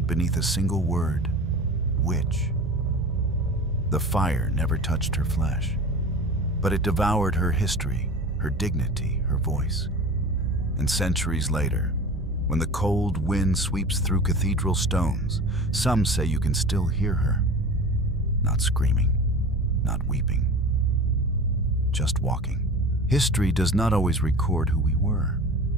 beneath a single word, witch? The fire never touched her flesh, but it devoured her history, her dignity, her voice. And centuries later, when the cold wind sweeps through cathedral stones, some say you can still hear her, not screaming, not weeping, just walking. History does not always record who we were.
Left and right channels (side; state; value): both; normal; correlation 0.35